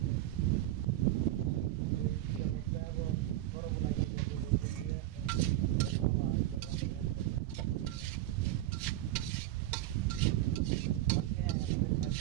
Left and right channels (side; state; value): left; quieter; 14.7 dB